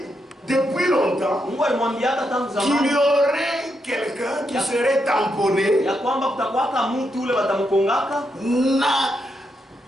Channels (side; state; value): both; normal; correlation 0.82